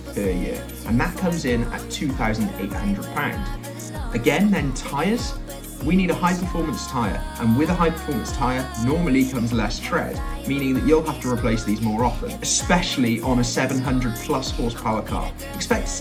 year, and that comes in at £2,800. Again, then tyres. We need a high performance tyre, and with a high performance tyre normally comes less tread, meaning that you'll have to replace these more often, especially on a 700 plus horsepower car. Expect to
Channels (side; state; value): both; identical; correlation 1.00